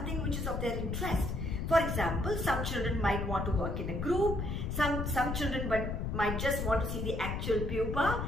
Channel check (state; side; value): noise; left; rumble, 2 dB below the sound